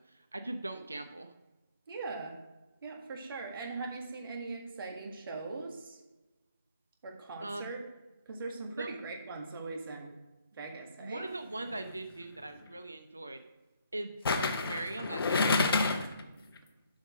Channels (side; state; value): both; inverted; correlation -0.64